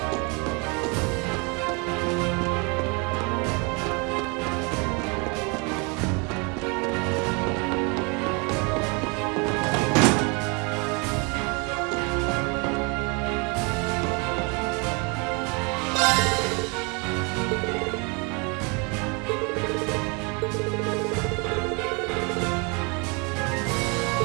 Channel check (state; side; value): quieter; left; 31.5 dB